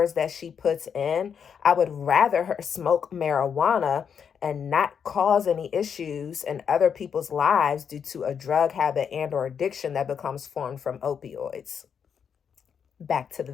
that she puts in. I would rather her smoke marijuana and not cause any issues in other people's lives due to a drug habit and or addiction that becomes formed from opioids. Back to the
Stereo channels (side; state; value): right; quieter; 7.3 dB